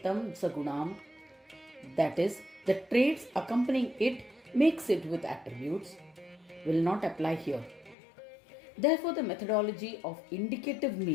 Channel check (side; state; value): right; drops out; at 8.0 s